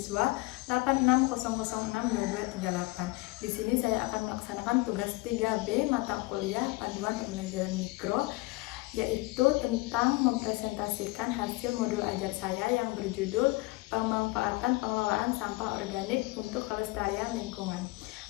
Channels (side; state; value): right; quieter; 23.0 dB